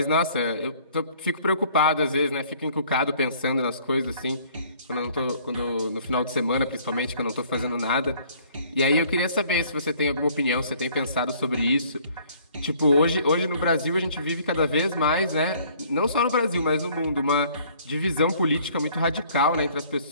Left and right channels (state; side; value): inverted; both; correlation -0.58